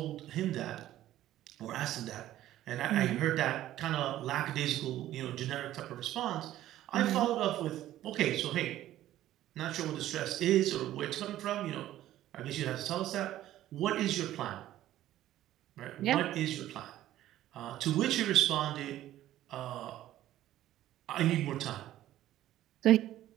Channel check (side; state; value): left; quieter; 13.6 dB